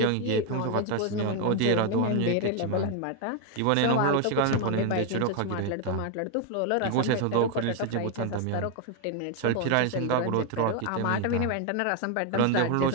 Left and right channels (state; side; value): different; both; correlation 0.01